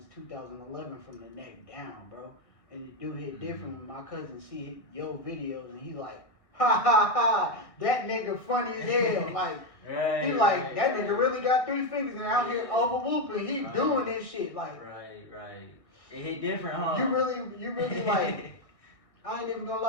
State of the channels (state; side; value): late; right; 1.6 ms